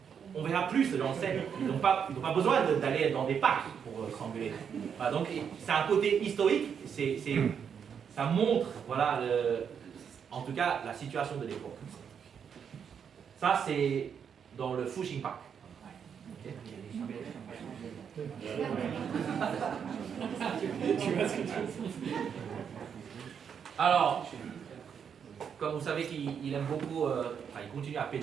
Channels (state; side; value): quieter; left; 7.4 dB